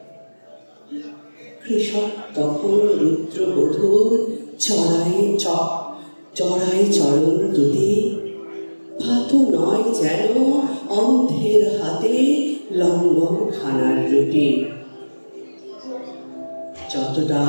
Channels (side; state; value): both; inverted; correlation -1.00